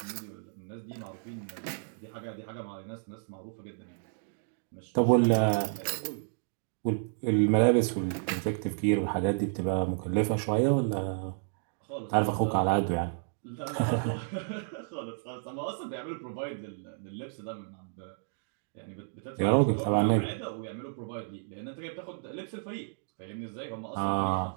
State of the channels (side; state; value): left; silent; digital silence